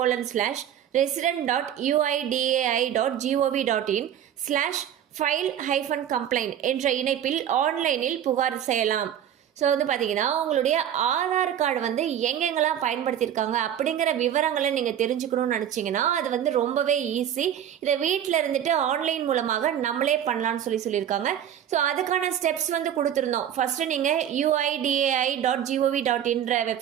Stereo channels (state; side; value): quieter; left; 10.0 dB